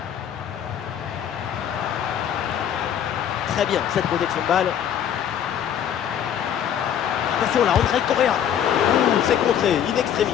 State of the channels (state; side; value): quieter; right; 9.4 dB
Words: Très bien cette protection de balle. Attention là, André Correa. C'est contré, in extremis.